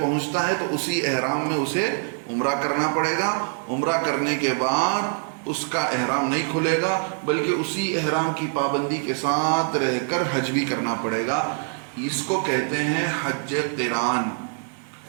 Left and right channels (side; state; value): left; silent; 56 dB below the other